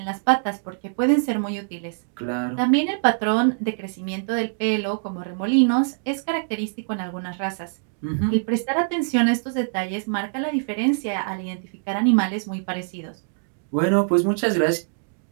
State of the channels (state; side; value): silent; left; digital silence